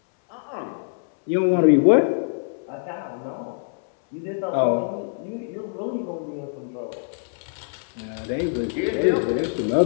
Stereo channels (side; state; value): right; silent; 62 dB below the other